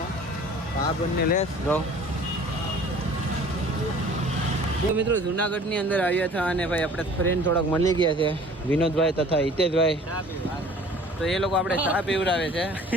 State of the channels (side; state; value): both; normal; correlation 0.49